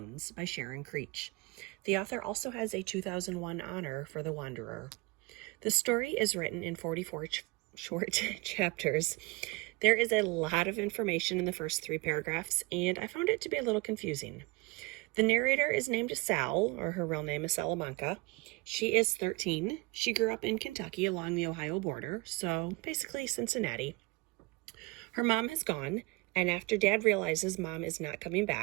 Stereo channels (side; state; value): left; quieter; 25.1 dB